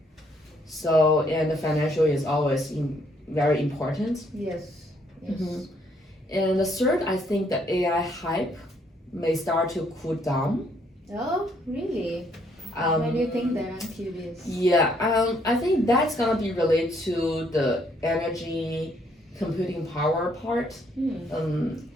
So, and the financial is always very important. Yes. And the third, I think the AI hype may start to cool down. Oh, really? Why do you think that? I'm curious. Yeah, I think that's gonna be related to the energy computing power part.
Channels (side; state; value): both; normal; correlation 0.69